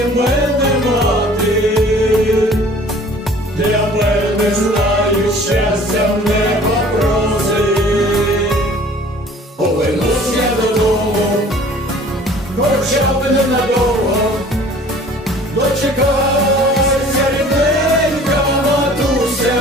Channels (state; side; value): normal; both; correlation 0.49